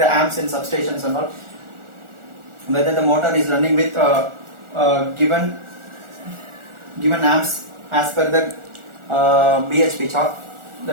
amps and substations and all, whether the motor is running with given amps as per the BHP chart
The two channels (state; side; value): late; left; 1.4 ms